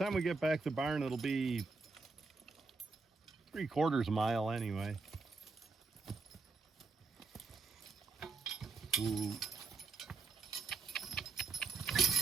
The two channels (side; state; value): left; quieter; 4.0 dB